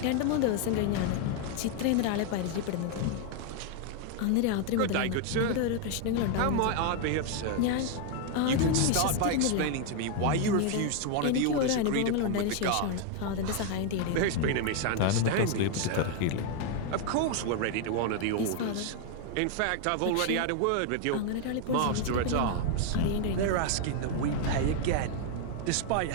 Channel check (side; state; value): both; different; correlation 0.01